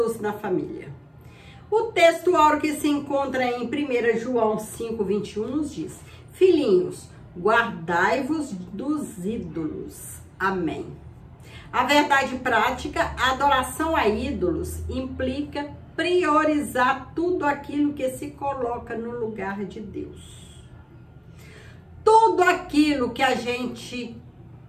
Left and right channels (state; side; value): identical; both; correlation 1.00